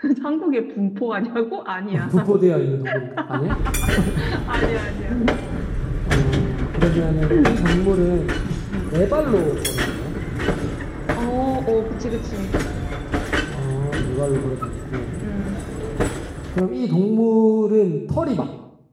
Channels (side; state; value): both; identical; correlation 1.00